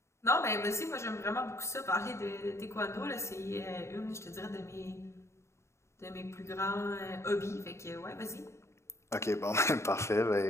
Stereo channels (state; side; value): late; right; 0.13 ms